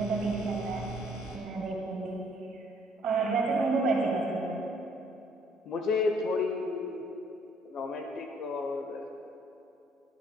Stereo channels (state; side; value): normal; both; correlation 0.63